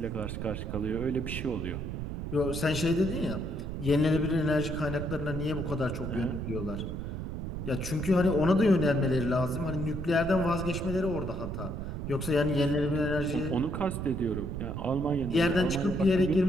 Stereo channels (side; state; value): right; noise; rumble, 5 dB below the sound